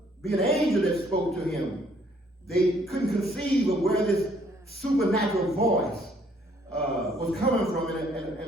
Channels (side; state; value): both; normal; correlation 0.64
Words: be an angel that spoke to him. They couldn't conceive of where this supernatural voice was coming from